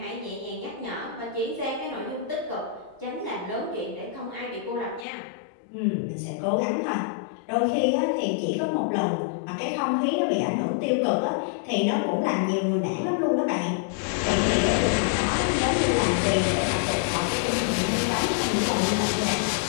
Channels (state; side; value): drops out; right; at 5.1 s